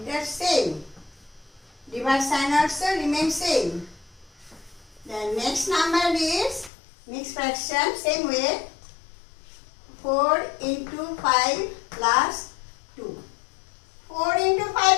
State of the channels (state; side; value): drops out; right; at 6.7 s